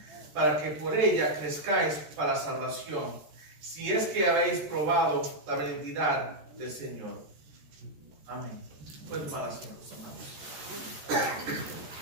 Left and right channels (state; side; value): late; left; 13 ms